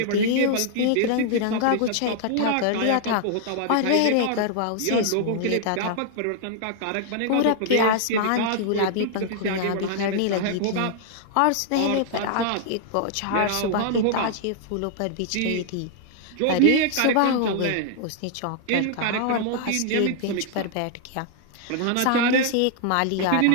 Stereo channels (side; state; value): both; different; correlation -0.01